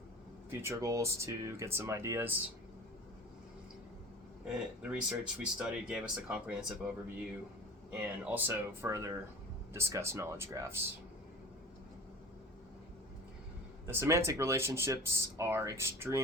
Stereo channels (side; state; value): both; normal; correlation 0.40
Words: future goals to get some ideas. The research we studied gave us a comprehensive overview and also further discuss knowledge graphs. The semantic relationships are